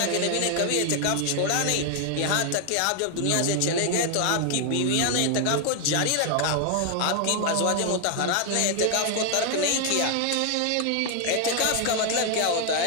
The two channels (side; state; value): both; different; correlation 0.00